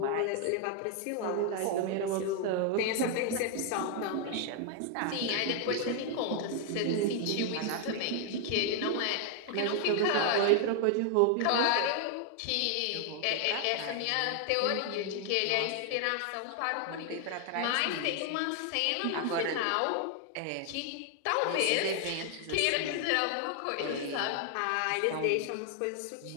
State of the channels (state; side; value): different; both; correlation 0.00